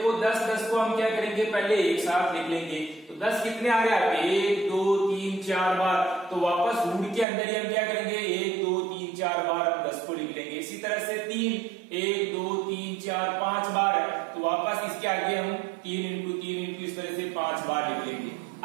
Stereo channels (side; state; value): left; drops out; at 7.2 s